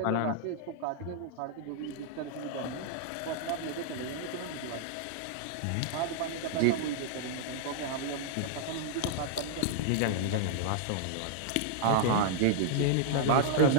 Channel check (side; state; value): both; different; correlation -0.01